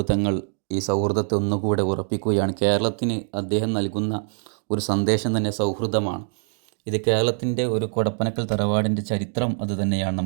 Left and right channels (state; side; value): silent; left; 63 dB below the other